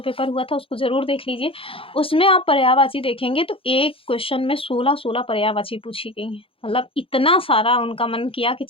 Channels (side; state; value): right; late; 0.27 ms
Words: पेपर हुआ था उसको जरूर देख लीजिए। उसमें आप पर्यायवाची देखेंगे तो एक क्वेश्चन में 16 पर्यायवाची पूछी गई है। मतलब इतना सारा उनका मन किया कि